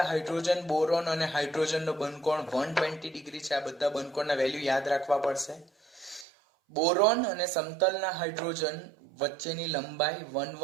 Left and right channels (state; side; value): drops out; left; at 6.2 s